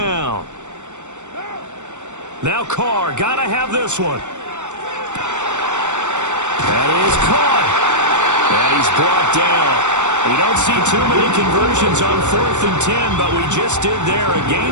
Now Carr, got to have this one. That is caught. And he's brought down. We don't see too many conversions on 4th and 10, but we just did there. A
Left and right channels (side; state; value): left; late; 0.84 ms